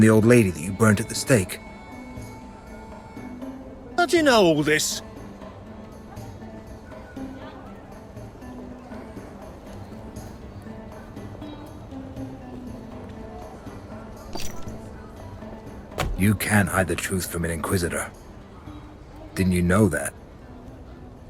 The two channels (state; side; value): identical; both; correlation 1.00